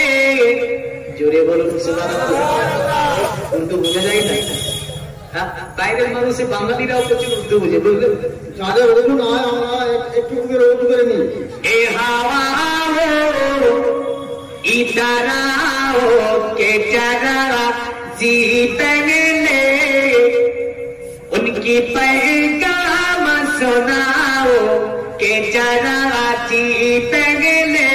জোরে বলুন সুবহানাল্লাহ। উর্দু বোঝা যায় না? হ্যাঁ, বাইরের মানুষে বাঙালিরাও প্রচুর উর্দু বুঝে, বুঝলেন? যাদের উর্দু নয় আমরা একটু উর্দু করে নিই। এ হাওয়া ইধর आओ के जरा जी पहले उनकी पैगाम सुनाओ के जरा जी पहले,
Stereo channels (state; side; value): identical; both; correlation 1.00